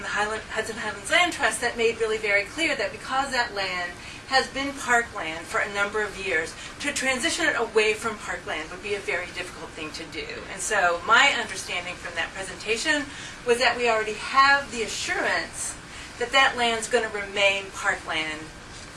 the Hudson Highlands Land Trust that made really very clear that because that land has been parkland for a number of years, to transition it away from parkland would be a very difficult thing to do. And so my understanding from that presentation was that we already have the assurance that that land's going to remain parkland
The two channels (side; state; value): both; identical; correlation 1.00